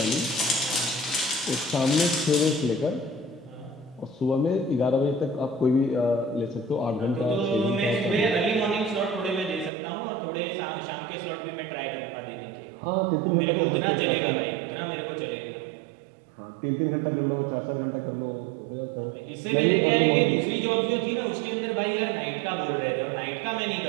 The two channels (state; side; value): drops out; left; at 9.7 s